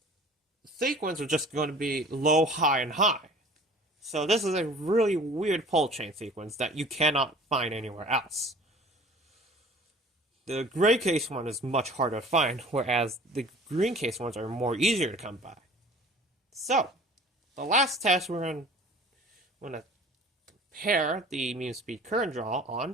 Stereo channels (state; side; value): normal; both; correlation 0.46